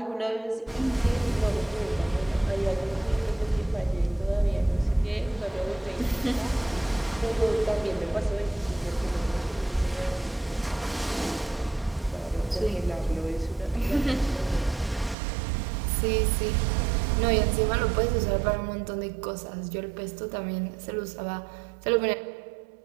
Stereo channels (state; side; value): drops out; left; at 15.2 s